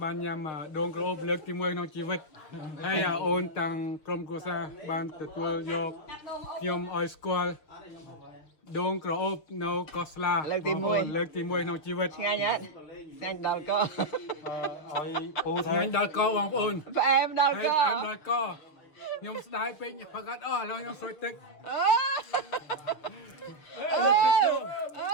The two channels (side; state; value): right; late; 6.5 ms